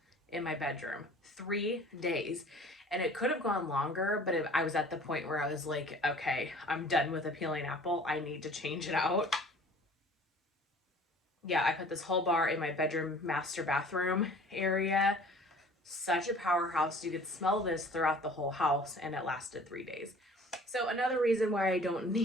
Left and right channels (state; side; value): normal; both; correlation 0.49